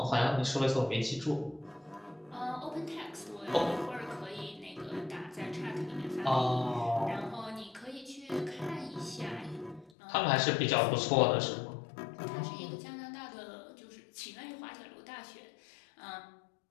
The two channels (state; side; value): drops out; right; at 9.9 s